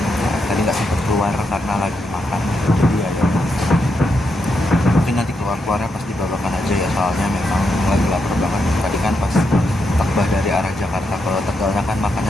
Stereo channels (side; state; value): both; normal; correlation 0.82